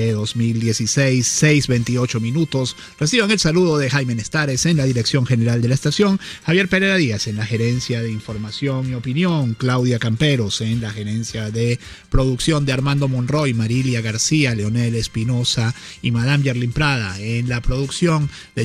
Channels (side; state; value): both; identical; correlation 1.00